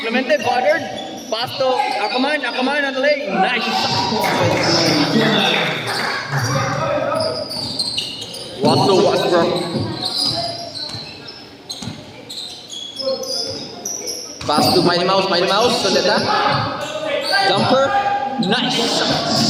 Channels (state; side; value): identical; both; correlation 1.00